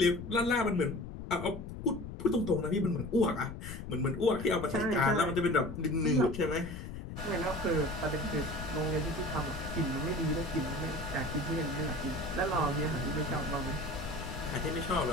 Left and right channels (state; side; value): noise; left; rumble, 9 dB below the sound